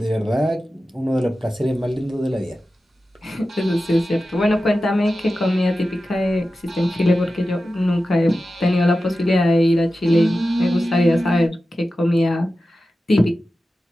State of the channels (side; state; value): both; normal; correlation 0.93